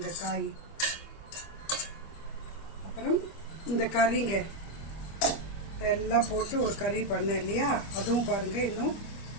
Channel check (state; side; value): late; right; 25 ms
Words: காய். அப்புறம் இந்த கறிங்க இதெல்லாம் போட்டு ஒரு கறி பண்ணேன் இல்லையா, அதுவும் பாருங்கள் இன்னும்